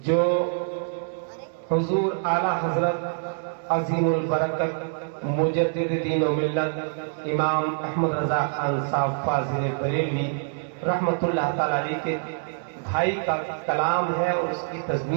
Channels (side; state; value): left; silent; digital silence